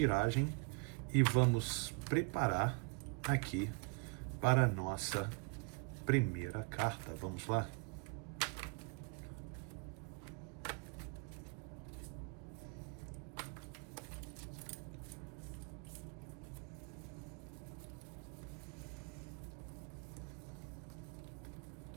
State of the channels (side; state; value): left; quieter; 31.7 dB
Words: e vamos preparar aqui para a nossa primeira carta. Vamos lá?